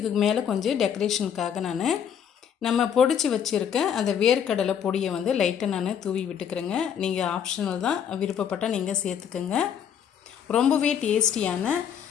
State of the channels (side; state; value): right; quieter; 8.3 dB